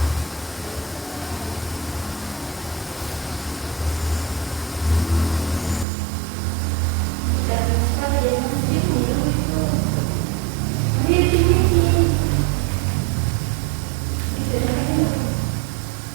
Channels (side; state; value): left; drops out; at 5.9 s